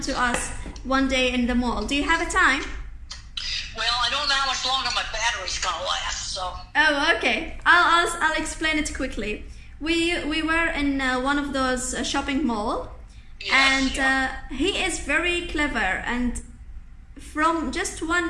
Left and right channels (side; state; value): both; identical; correlation 1.00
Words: to us one day in the mall. Do you have a time? Well, I don't know how much longer my battery's gonna last, so. Oh, okay. I'll explain it quickly. We were in one of those shopping mall, yes, and he is very clever. And from just